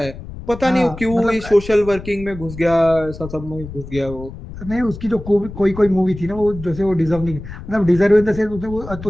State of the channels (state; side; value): noise; left; rumble, 13 dB below the sound